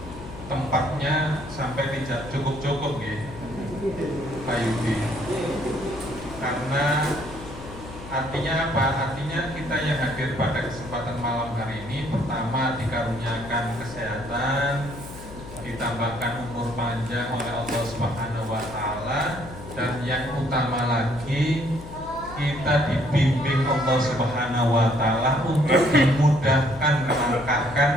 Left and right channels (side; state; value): left; noise; hum, 14 dB below the sound